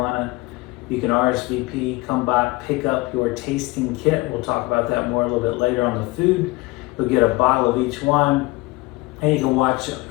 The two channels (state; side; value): quieter; right; 22.2 dB